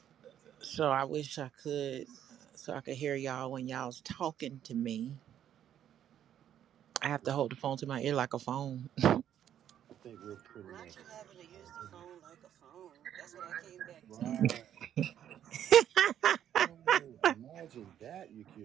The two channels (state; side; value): quieter; left; 10.3 dB